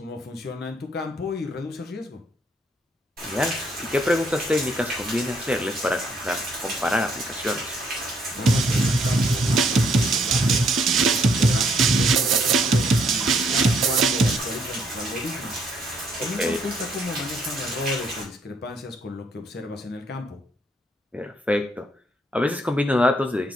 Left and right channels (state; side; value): normal; both; correlation 0.69